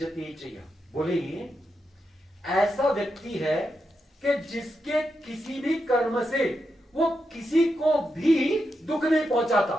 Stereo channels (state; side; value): normal; both; correlation 0.86